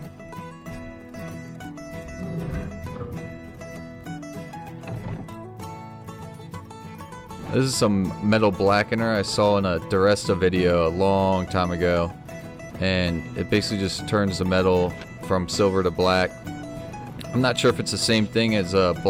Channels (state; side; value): identical; both; correlation 1.00